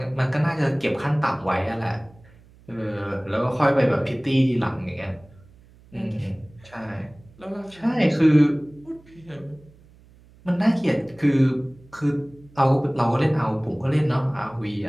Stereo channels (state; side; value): noise; right; hum, 26 dB below the sound